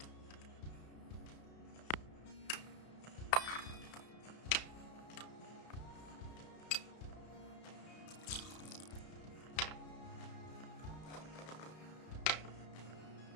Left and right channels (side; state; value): right; late; 32 ms